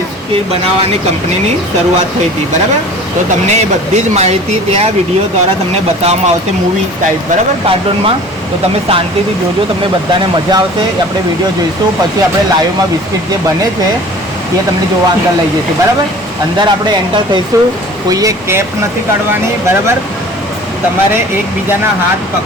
બનાવવાની કંપનીની શરૂઆત થઈ હતી, બરાબર. તો તમને એ બધી જ માહિતી ત્યાં વિડીયો દ્વારા તમને બતાવવામાં આવશે મૂવી ટાઈપ, બરાબર, કાર્ટૂનમાં. તો તમે શાંતિથી જોજો, તમને બધાને મજા આવશે. આપણે વિડીયો જોઈશું, પછી આપણે લાઈવમાં બિસ્કિટ જે બને છે એ તમને જોવા અંદર લઈ જશે, બરાબર. અંદર આપણે એન્ટર થઈશું, કોઈએ કેપ નથી કાઢવાની, બરાબર. તમારે એકબીજાના હાથ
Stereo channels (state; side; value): normal; both; correlation 0.44